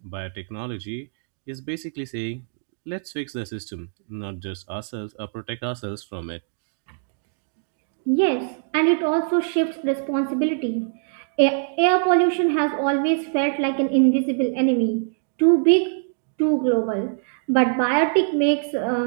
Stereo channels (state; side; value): silent; left; digital silence